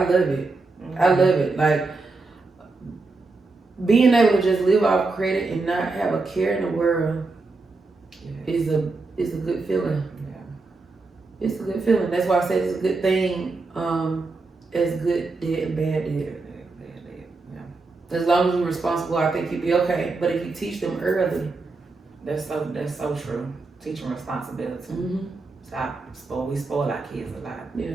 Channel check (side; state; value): left; quieter; 3.7 dB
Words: it. I love it. Like, being able to just live off credit and not have a care in the world is a good feeling. Yeah. It's a good feeling. That's why I say it's a good thing. As good debt and bad debt. Yeah. As long as you're responsible, I think you'll be okay. But if you teach them early, that's so true. Teach them responsibility. We spoil our kids a lot. Yeah.